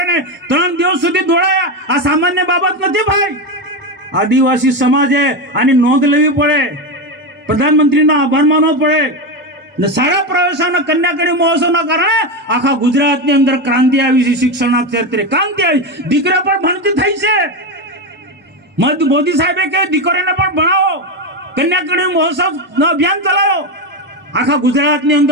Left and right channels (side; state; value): both; normal; correlation 0.13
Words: 3 દિવસ સુધી દોડાયા. આ સામાન્ય બાબત નથી ભાઈ. આદિવાસી સમાજે આની નોંધ લેવી પડે, પ્રધાનમંત્રીનો આભાર માનવો પડે. ને શાળા પ્રવેશોના કન્યા કેળવણી મહોત્સવના કારણે આખા ગુજરાતની અંદર ક્રાંતિ આવી છે. શિક્ષણના ક્ષેત્રે ક્રાંતિ આવી. દીકરા પણ ભણતી થઈ છે. મોદી સાહેબે કહે દીકરીઓને પણ ભણાવો, કન્યા કેળવણી મહોત્સવનો અભિયાન ચલાવો. આખા ગુજરાતની